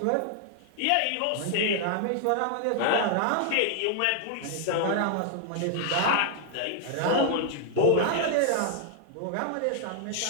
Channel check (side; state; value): both; different; correlation 0.00